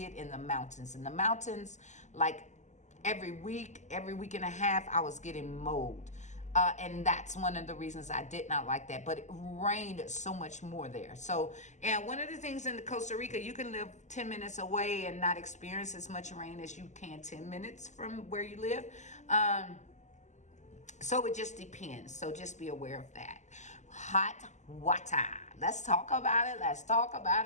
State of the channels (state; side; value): late; right; 0.34 ms